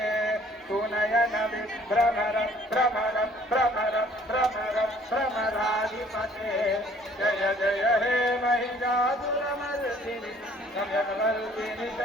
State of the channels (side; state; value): both; normal; correlation 0.58